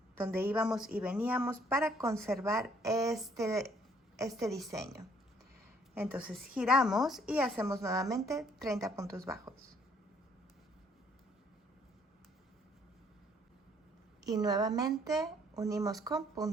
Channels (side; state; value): both; normal; correlation 0.64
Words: donde íbamos y veníamos para conservar este diseño. Entonces giramos y hacemos nuevamente 30 puntos bajos. Y nuevamente unimos con